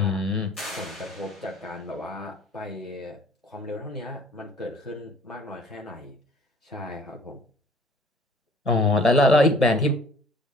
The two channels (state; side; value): normal; both; correlation 0.53